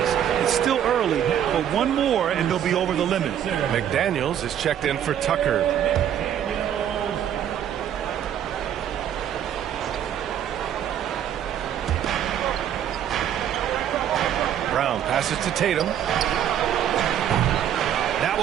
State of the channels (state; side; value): quieter; left; 9.9 dB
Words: It's still early, but one more and they'll be over the limit. McDaniels is checked in for Tucker. Brown passes to Tatum. That